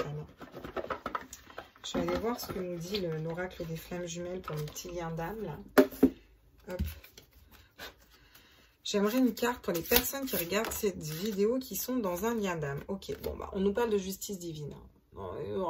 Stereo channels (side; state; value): both; identical; correlation 1.00